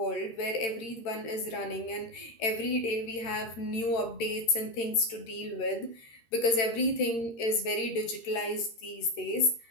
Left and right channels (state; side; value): late; right; 13 ms